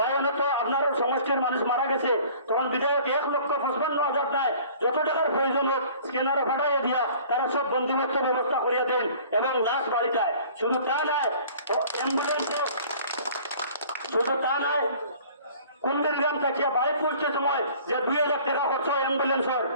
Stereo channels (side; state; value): both; inverted; correlation -0.49